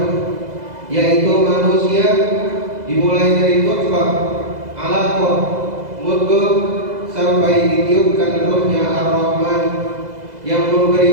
yaitu manusia dimulai dari nutfah, alaqah, mudghah sampai ditiupkan ruhnya Ar-Rahman yang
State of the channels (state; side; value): late; left; 2.0 ms